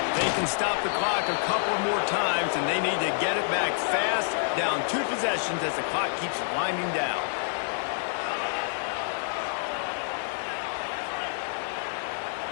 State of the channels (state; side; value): silent; right; 59 dB below the other